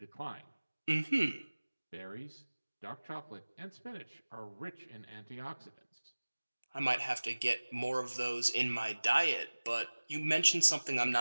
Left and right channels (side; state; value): both; inverted; correlation -1.00